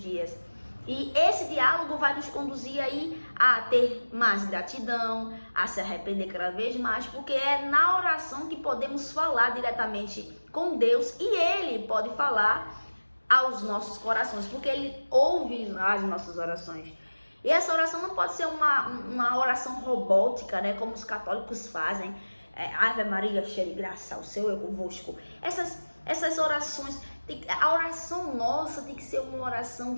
E esse diálogo vai nos conduzir aí a ter mais gratidão, a se arrepender cada vez mais, porque é na oração que podemos falar diretamente com Deus e Ele pode falar aos nossos corações, porque Ele ouve as nossas orações. E essa oração não pode ser uma oração robótica, né, como os católicos fazem. Ave Maria, cheia de graça, o Senhor é convosco. Essas orações, a oração nossa tem que ser uma oração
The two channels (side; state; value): both; inverted; correlation -1.00